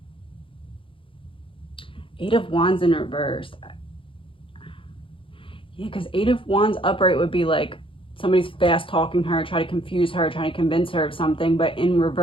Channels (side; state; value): right; late; 0.25 ms